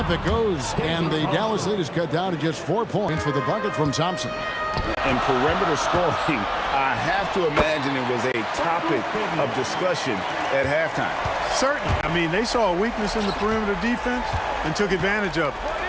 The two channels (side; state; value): both; identical; correlation 1.00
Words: it goes. And the Dallas lead is cut down to just 4 points with a bucket from Thompson. And perimeter scoring, I have to imagine it was a topic of discussion at halftime. Certainly. I mean, they saw a weakness in the perimeter defense and took advantage of it.